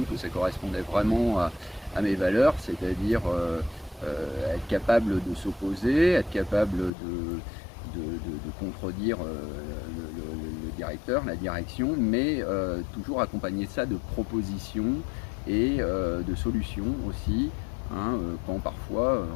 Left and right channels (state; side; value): drops out; right; at 6.9 s